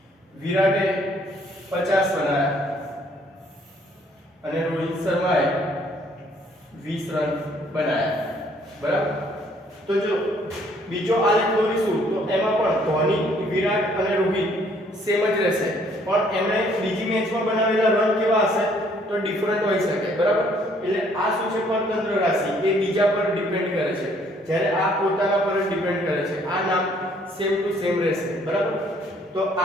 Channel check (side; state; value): both; normal; correlation 0.63